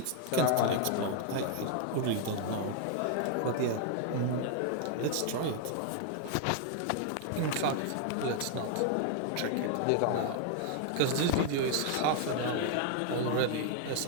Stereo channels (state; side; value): different; both; correlation 0.00